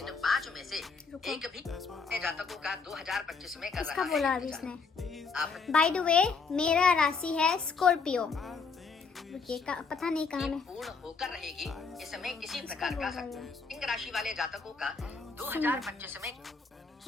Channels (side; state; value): right; quieter; 4.9 dB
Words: 5 में से एक भी जातकों का 2025 में कर इसका रहा बोला है अभी इसने। आप बाय द वे, मेरा राशि है स्कॉर्पियो। रुकिए, पता नहीं कहाँ में पूर्ण होकर रहेगी। इसमें किसी प्रकार का सिंह राशि वाले जातकों का 2025 में